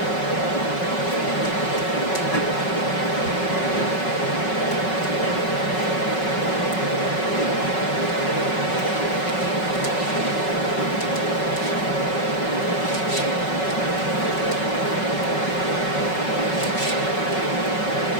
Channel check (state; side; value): late; right; 5.4 ms